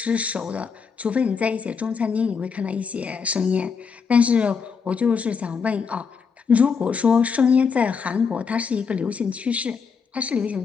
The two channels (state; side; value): quieter; right; 5.8 dB